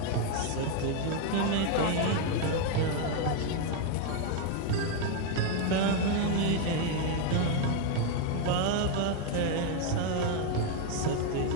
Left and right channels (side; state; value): both; different; correlation 0.01